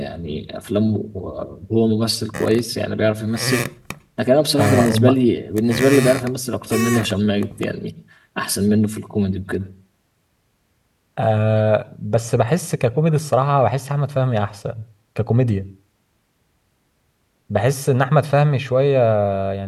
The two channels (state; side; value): identical; both; correlation 1.00